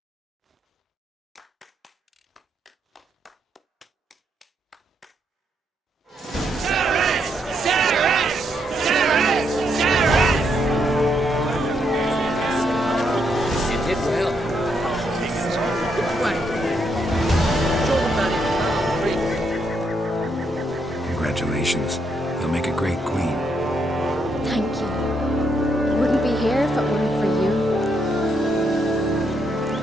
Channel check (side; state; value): both; normal; correlation 0.77